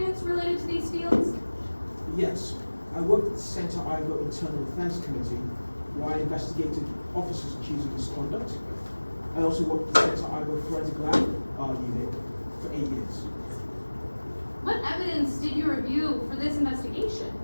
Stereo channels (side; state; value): both; inverted; correlation -1.00